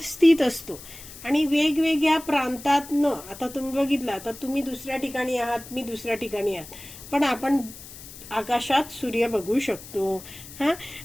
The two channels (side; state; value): left; noise; hiss, 16 dB below the sound